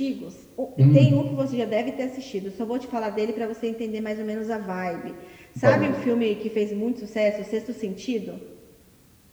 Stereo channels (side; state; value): both; identical; correlation 1.00